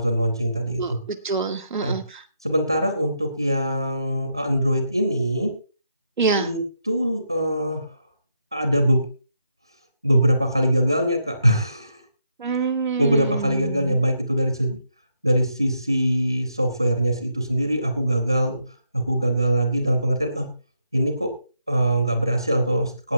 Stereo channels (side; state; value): both; inverted; correlation -0.80